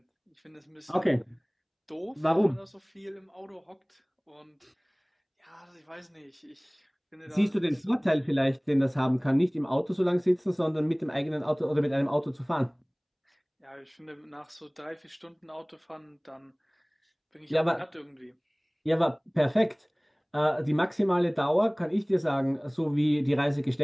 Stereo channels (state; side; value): identical; both; correlation 1.00